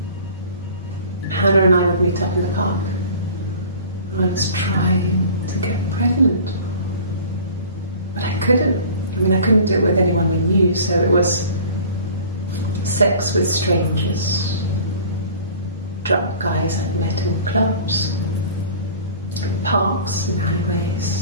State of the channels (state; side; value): inverted; both; correlation -0.43